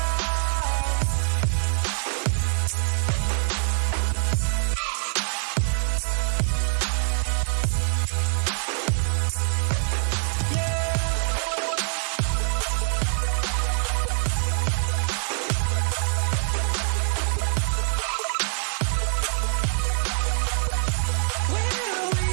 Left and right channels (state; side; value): silent; left; 60 dB below the other